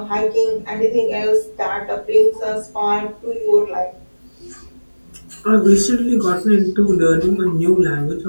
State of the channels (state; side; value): inverted; both; correlation -1.00